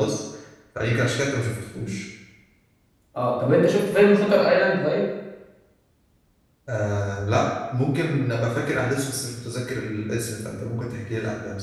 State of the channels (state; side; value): identical; both; correlation 1.00